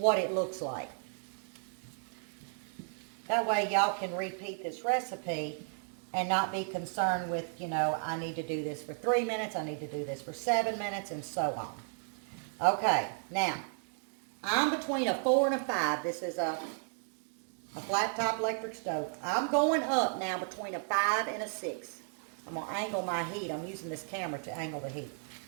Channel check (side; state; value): left; silent; 55 dB below the other